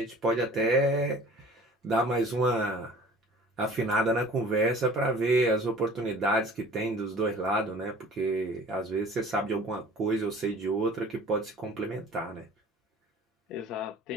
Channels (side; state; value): both; normal; correlation 0.47